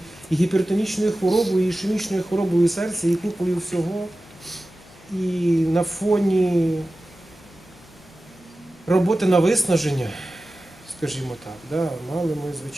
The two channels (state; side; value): normal; both; correlation 0.95